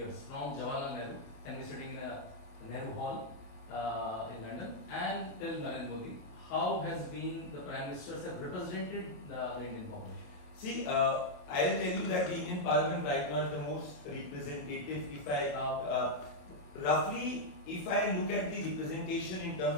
from Jawaharlal Nehru, and we're sitting in a Nehru Hall in London, and till Narendra Modi. How has been the prime ministers have represented the Indian population? See, I'll tell you that the Indian Parliament right now is the most representative. If I roughly, if I look at the representation in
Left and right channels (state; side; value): late; right; 28 ms